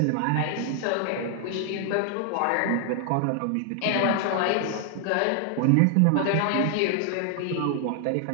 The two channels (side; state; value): both; different; correlation 0.00